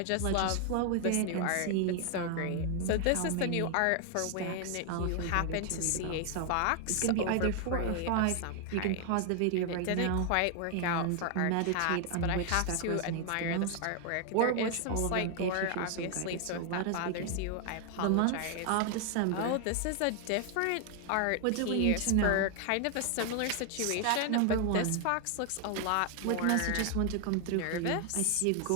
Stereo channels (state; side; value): different; both; correlation 0.00